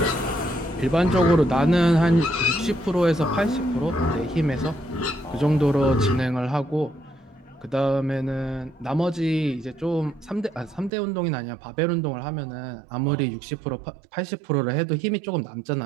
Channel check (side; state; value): left; drops out; at 10.9 s